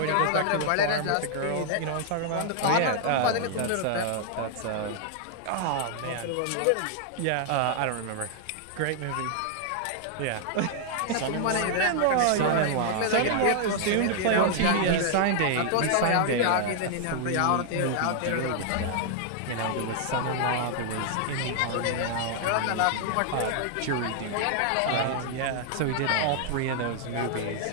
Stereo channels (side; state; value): both; different; correlation -0.01